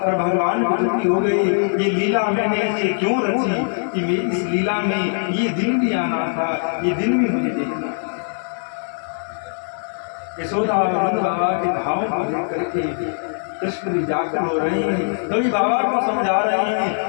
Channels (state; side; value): silent; right; 64 dB below the other